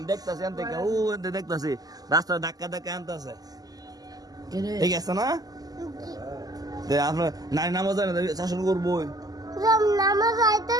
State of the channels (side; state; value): left; late; 0.18 ms